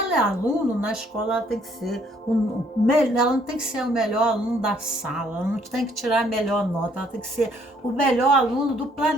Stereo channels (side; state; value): both; normal; correlation 0.65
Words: é aluno, na escola ela tem que ser ela não tem que ser o melhor aluno da sala, ela não tem que tirar a melhor nota, ela tem que ser o melhor aluno do